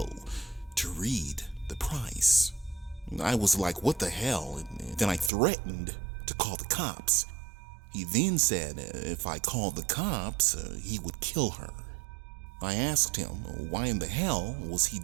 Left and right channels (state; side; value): drops out; left; at 5.3 s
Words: to read the price. I was like, what the hell? And then I threatened to call the cops. He then said if I called the cops, he would kill her. I asked him why in the hell was he